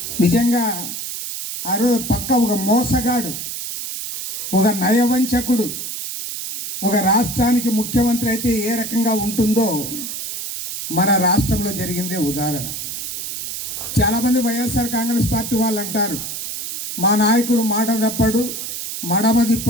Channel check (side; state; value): right; noise; hiss, 6 dB below the sound